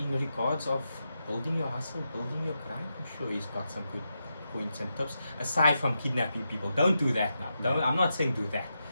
regards of building your hustle, building your grind, I'm sure he's got some good points and tips. Aside from kidnapping people, don't do that now. I'm not saying do that.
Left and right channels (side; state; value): both; inverted; correlation -0.86